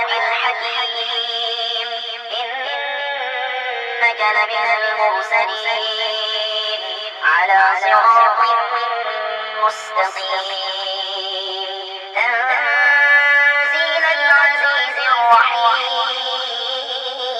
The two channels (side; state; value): both; identical; correlation 1.00